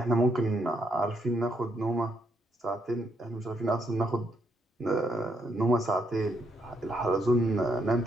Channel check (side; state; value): both; normal; correlation 0.75